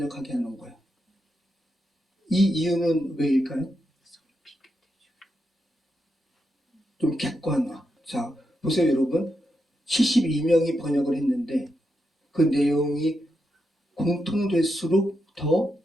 하는 거예요. 이 이유는 왜일까요? 좀 객관화. 자, 보세요 여러분. 72명이 번역을 했는데 그 내용이 공통될수록 더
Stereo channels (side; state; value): both; normal; correlation 0.85